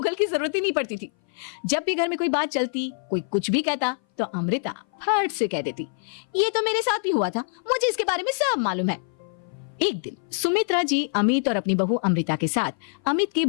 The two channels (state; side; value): silent; right; 58 dB below the other